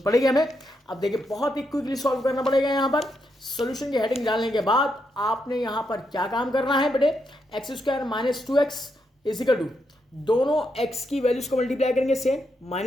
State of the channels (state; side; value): normal; both; correlation 0.81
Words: पड़ेगी हमें। अब देखिए बहुत ही क्विकली सॉल्व करना पड़ेगा। यहाँ पर सॉल्यूशन की हेडिंग डालने के बाद आपने यहाँ पर क्या काम करना है बेटे, x square minus 2x is equal to दोनों x की वैल्यूज को मल्टीप्लाई करेंगे सेम